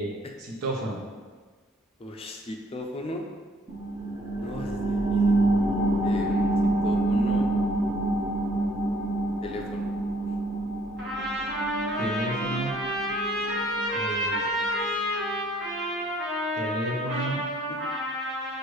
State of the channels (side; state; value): both; normal; correlation 0.60